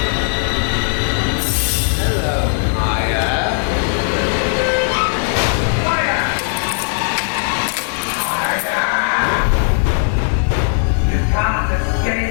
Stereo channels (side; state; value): right; silent; 58 dB below the other